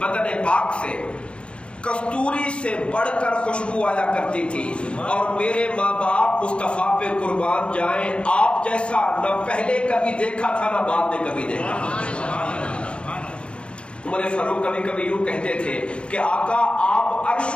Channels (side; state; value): right; late; 0.057 ms